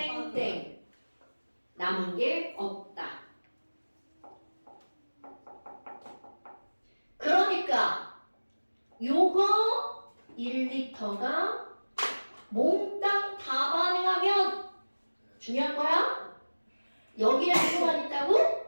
남은 게 없다. 그러니까 요거 1리터가 몽땅 다 반응하면 중요한 거야? 여기에 누구만 있다고?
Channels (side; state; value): both; inverted; correlation -1.00